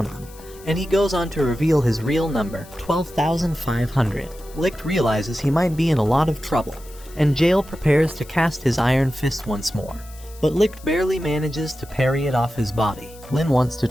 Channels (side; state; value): left; noise; hiss, 22 dB below the sound